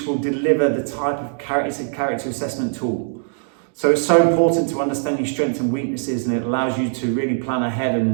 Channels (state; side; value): silent; left; digital silence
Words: will deliver the type of character assessment tool. So it's so important to understand your strengths and weaknesses, and it allows you to really plan ahead